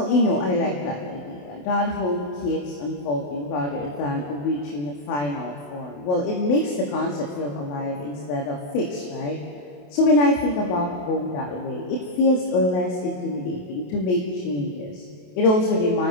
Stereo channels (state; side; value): late; right; 28 ms